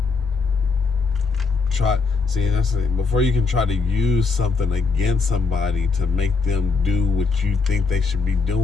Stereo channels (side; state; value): right; quieter; 4.5 dB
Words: try, that's the thing. Before you can try to use something against somebody to make them do what you think they should be